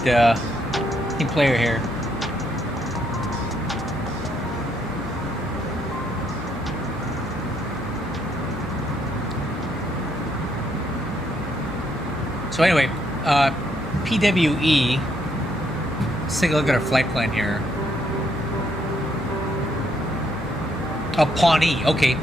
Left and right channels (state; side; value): normal; both; correlation 0.72